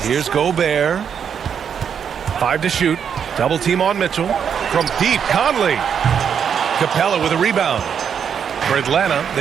Here's Gobert. 5 to shoot. Double team on Mitchell. From deep, Conley. Capella with a rebound. For Atlanta,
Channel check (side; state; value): left; quieter; 7.6 dB